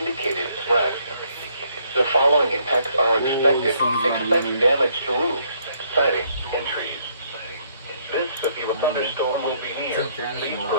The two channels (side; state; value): both; inverted; correlation -0.69